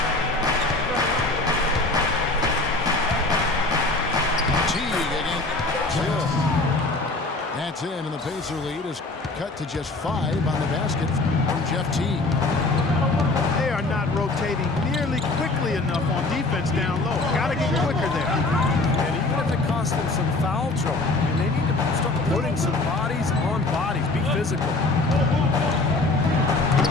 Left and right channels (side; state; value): right; quieter; 3.2 dB